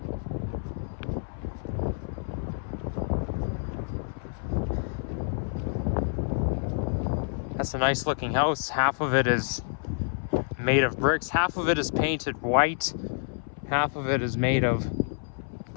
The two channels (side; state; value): right; silent; 59 dB below the other